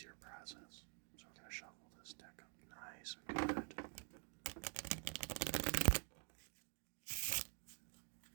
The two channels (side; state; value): left; quieter; 37.7 dB